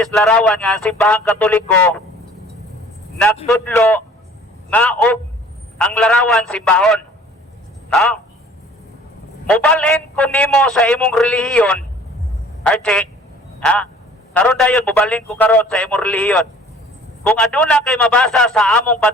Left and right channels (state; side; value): normal; both; correlation 0.51